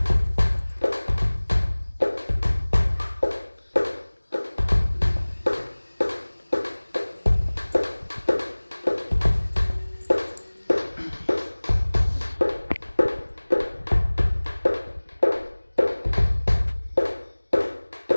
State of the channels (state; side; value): inverted; both; correlation -1.00